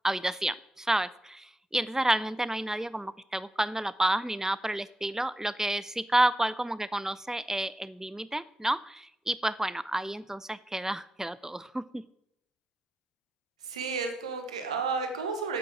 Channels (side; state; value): both; normal; correlation 0.86